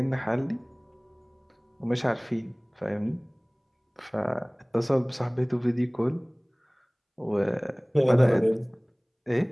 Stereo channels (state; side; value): identical; both; correlation 1.00